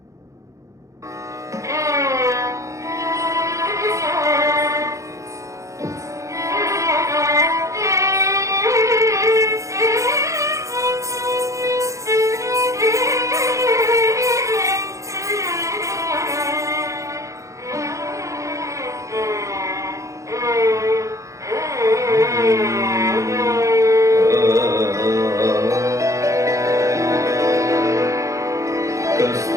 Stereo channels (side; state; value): left; late; 0.15 ms